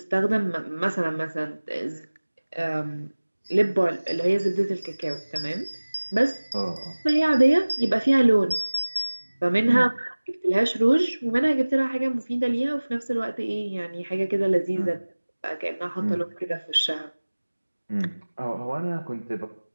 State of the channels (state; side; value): inverted; both; correlation -1.00